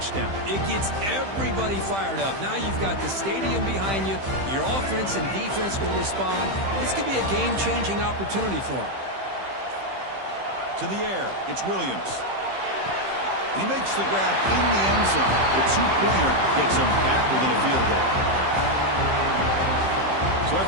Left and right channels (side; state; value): left; late; 15 ms